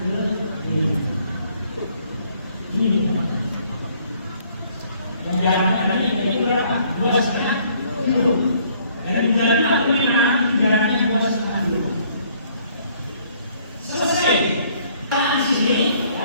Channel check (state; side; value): inverted; both; correlation -0.63